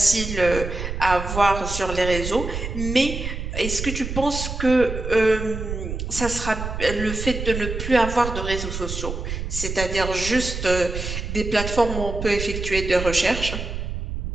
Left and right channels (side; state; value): right; noise; rumble, 5 dB below the sound